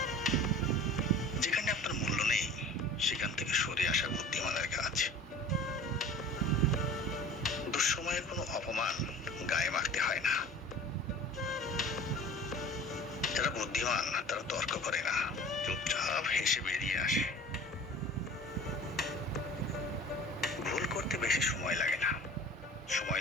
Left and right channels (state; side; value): normal; both; correlation 0.42